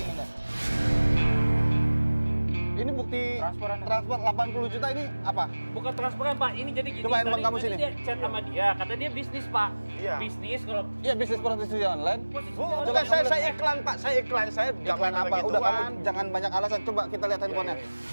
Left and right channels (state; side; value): inverted; both; correlation -1.00